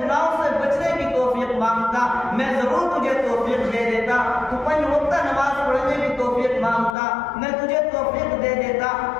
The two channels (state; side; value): drops out; right; at 7.0 s